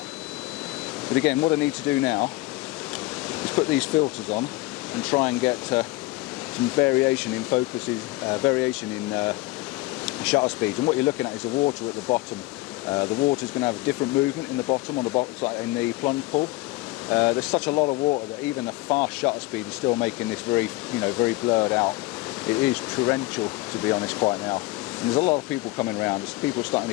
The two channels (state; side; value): quieter; right; 19.9 dB